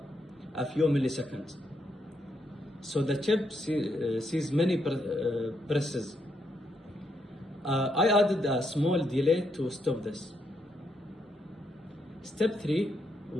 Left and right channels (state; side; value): normal; both; correlation 0.78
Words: a few milliseconds. So the chip sees many presses. I added a small delay to stop this. Step 3